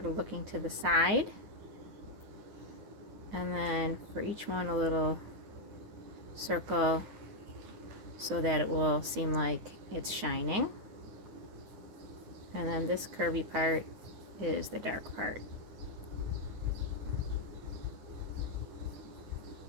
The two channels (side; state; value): left; late; 9.6 ms